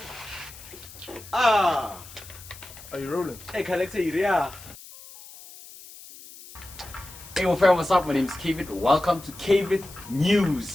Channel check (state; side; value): noise; left; hiss, 18 dB below the sound